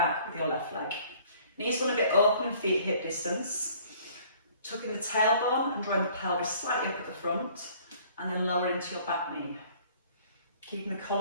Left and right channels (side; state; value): both; inverted; correlation -0.55